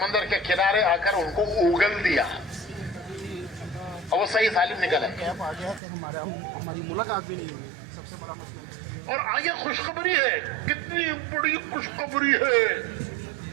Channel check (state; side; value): drops out; left; at 5.8 s